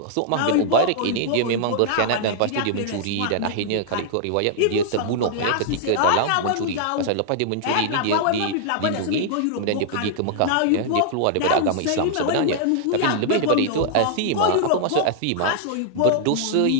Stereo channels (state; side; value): different; both; correlation -0.01